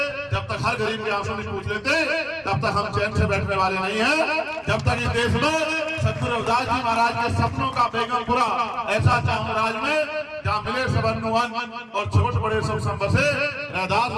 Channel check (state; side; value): identical; both; correlation 1.00